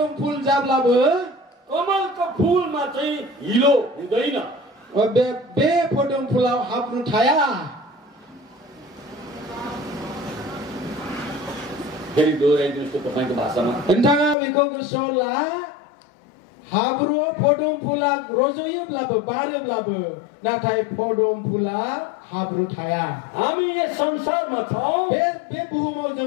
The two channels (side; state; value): right; drops out; at 14.4 s